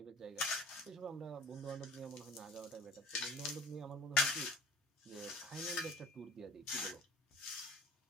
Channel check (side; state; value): both; normal; correlation 0.45